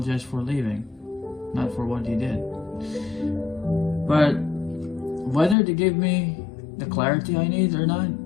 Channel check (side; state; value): right; drops out; at 5.6 s